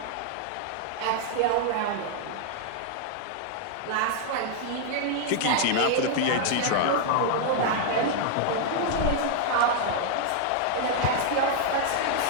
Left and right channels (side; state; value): both; different; correlation 0.00